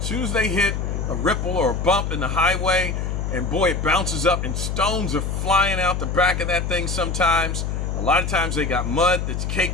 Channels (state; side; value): noise; left; hum, 2 dB below the sound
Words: soon as they hit a ripple or a bump in the highway, and boy, it bounces up, and stones are flying out the back of that thing sometimes. A lot of times they got mud that's